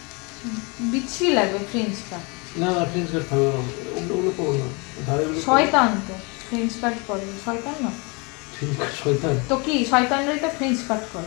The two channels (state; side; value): quieter; right; 29.9 dB